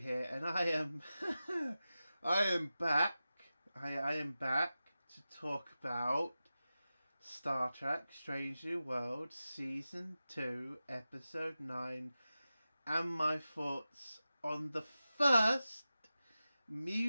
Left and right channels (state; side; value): inverted; both; correlation -0.94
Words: and I am I am back. I am back to talk about Star Trek Strange New Worlds Season 2, Episode 9, and my thoughts on the first